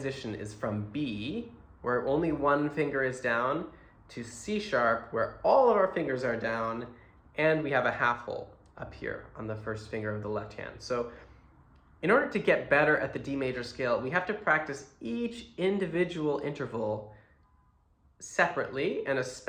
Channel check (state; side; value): identical; both; correlation 1.00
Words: is from B, where only one finger is down, to C sharp, where all of our fingers are down, and we have a half hole up here on the first finger of the left hand. So in order to get better at the D major scale, we have to practice each individual interval separately, and